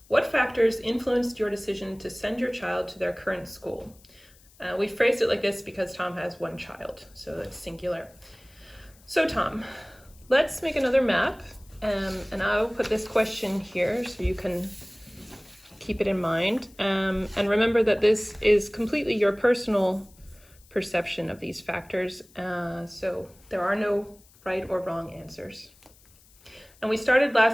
what factors influenced your decision to send your child to their current school? We phrased it like this because Tom has one child, so it's singular. So Tom, let's make another map, and I'll put this question here so you can keep it in mind. And remember that this is completely your personal perception of these factors, so there are no right or wrong answers. And we started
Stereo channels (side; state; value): left; noise; hiss, 28 dB below the sound